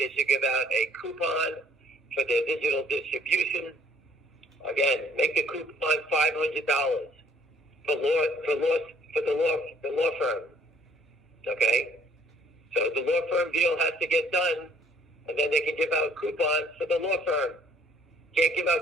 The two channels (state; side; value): normal; both; correlation 0.60